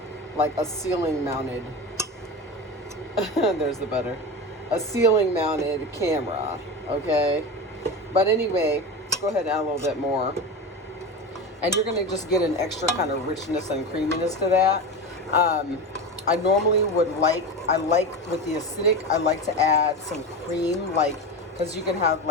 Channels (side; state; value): both; normal; correlation 0.24